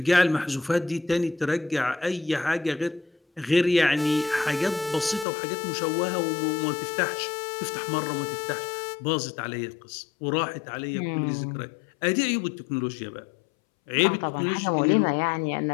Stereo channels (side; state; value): right; drops out; at 5.2 s